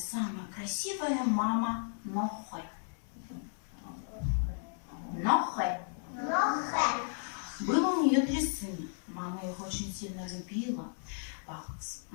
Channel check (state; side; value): silent; right; digital silence